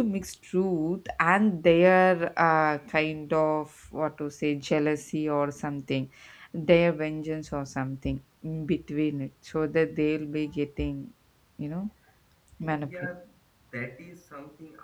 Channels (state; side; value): identical; both; correlation 1.00